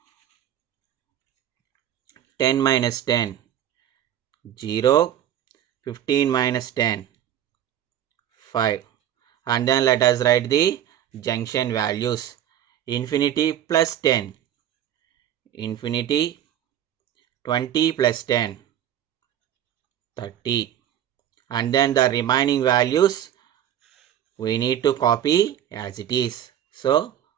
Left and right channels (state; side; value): quieter; left; 10.9 dB